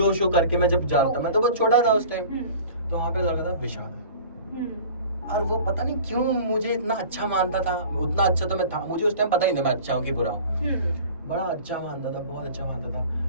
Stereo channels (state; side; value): inverted; both; correlation -0.42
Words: शो करके मैं जब जानता, मैं तो बहुत छोटा था उस टाइम, तो वहाँ पे लगा था विशाल, और वो पता नहीं क्यों मुझे इतना अच्छा मानता था, उतना अच्छा तो मैं था, मुझे उस टाइम पता ही नहीं मैं अच्छा हूँ कि बुरा हूँ, बड़ा अच्छा मानता था, बहुत अच्छा मानता था।